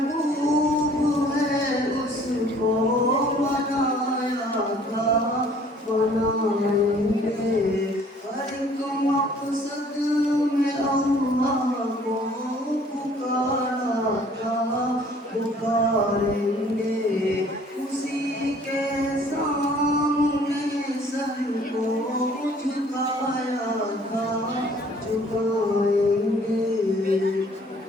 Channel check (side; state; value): both; normal; correlation 0.56